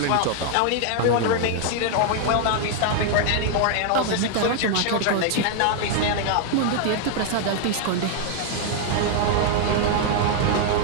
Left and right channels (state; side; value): different; both; correlation 0.00